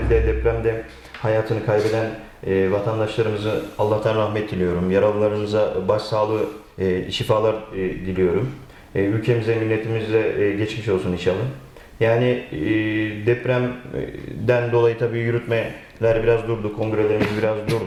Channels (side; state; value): both; identical; correlation 1.00